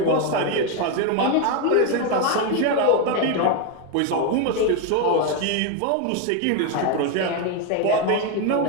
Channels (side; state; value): both; different; correlation 0.02